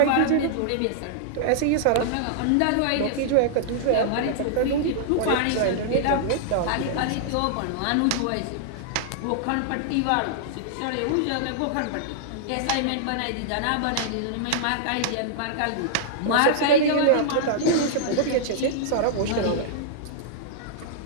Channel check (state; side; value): different; both; correlation -0.02